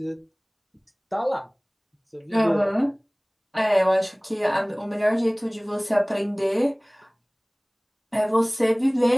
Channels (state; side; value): identical; both; correlation 1.00